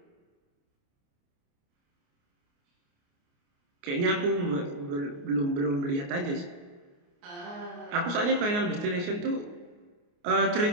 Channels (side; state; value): left; late; 29 ms